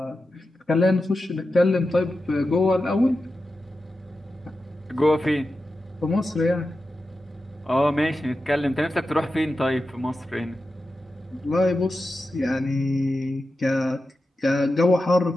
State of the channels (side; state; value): both; normal; correlation 0.91